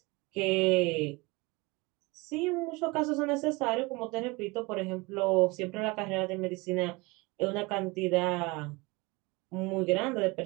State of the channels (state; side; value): quieter; left; 24.8 dB